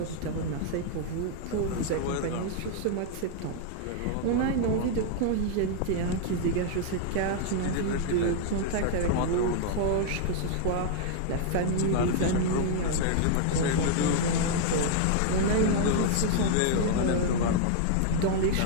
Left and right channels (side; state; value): both; different; correlation -0.01